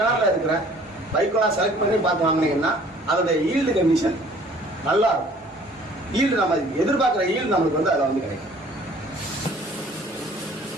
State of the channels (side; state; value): both; normal; correlation 0.54